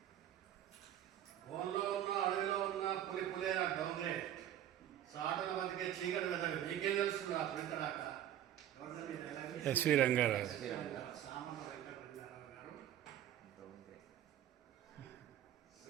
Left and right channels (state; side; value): quieter; left; 11.4 dB